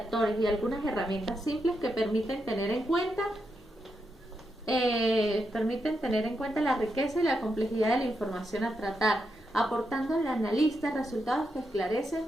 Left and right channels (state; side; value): normal; both; correlation 0.84